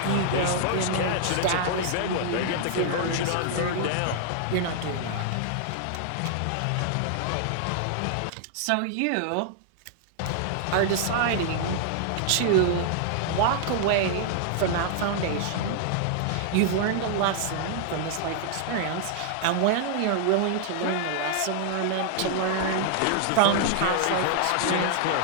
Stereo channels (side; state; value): both; different; correlation -0.01